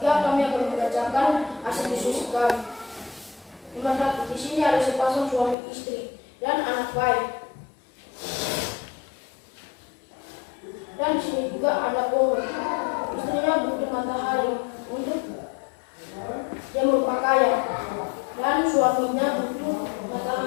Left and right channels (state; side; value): drops out; right; at 5.6 s